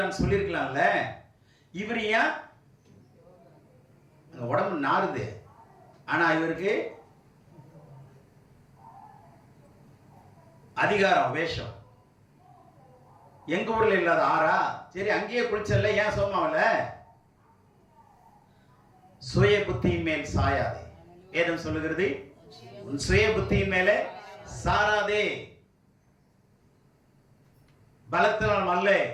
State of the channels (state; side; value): identical; both; correlation 1.00